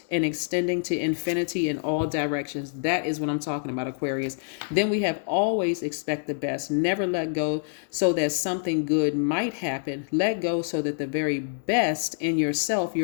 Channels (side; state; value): right; silent; digital silence